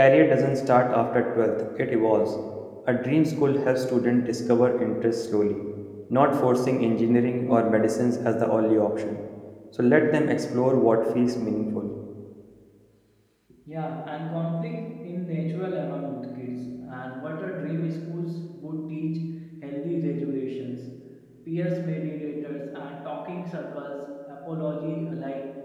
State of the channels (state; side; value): identical; both; correlation 1.00